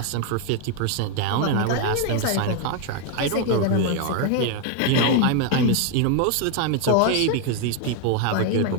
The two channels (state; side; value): different; both; correlation 0.01